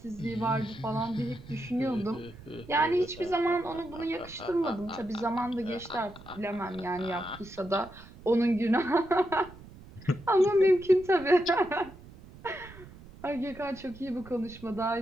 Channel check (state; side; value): noise; right; rumble, 19 dB below the sound